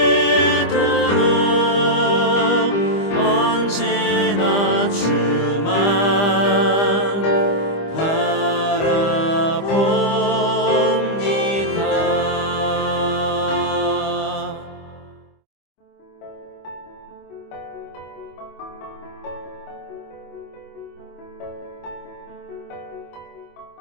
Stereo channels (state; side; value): late; right; 25 ms